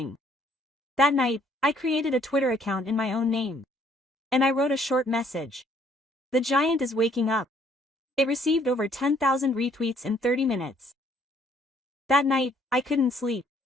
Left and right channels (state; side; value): normal; both; correlation 0.63